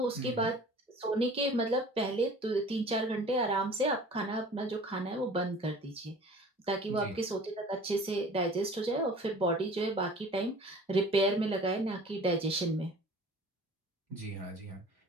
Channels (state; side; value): normal; both; correlation 0.45